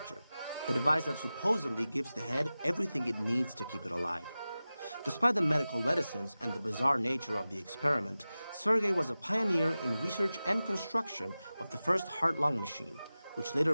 the device that supposedly gives the head everything it needs to keep it alive. Despite the medical reticence and the bizarre nature of the experiment, Sergei was a pioneer in research and construction of the first heart-lung machine, which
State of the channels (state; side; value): inverted; both; correlation -0.96